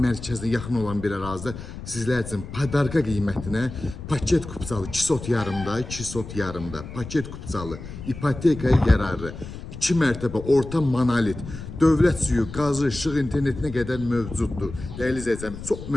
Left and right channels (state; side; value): noise; left; rumble, 11 dB below the sound